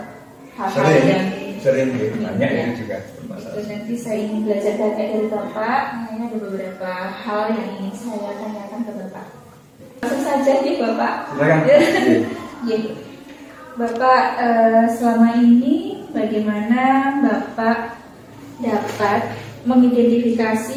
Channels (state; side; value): identical; both; correlation 1.00